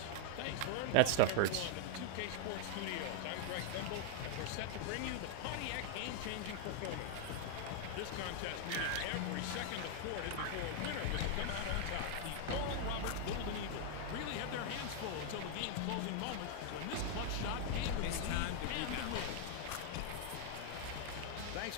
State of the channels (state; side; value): different; both; correlation 0.00